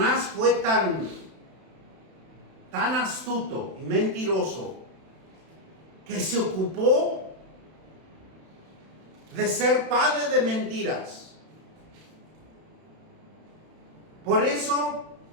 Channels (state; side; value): late; left; 31 ms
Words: fue tan astuto y mentiroso que se ocupó de ser padre de mentiras. Por eso,